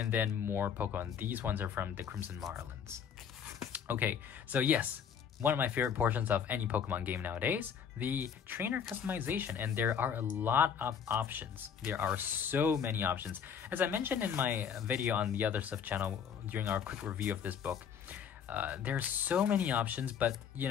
then more Pokemon. These ones are from the Crimson Marlins. Okay, so yes, one of my favorite portions of any Pokemon game nowadays, the trainer customization, and there are a lot of options. There are so many options. As I mentioned in my video on the Other Stuff channel during our quick review of this book, there's so many options, but you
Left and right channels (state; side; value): quieter; right; 7.6 dB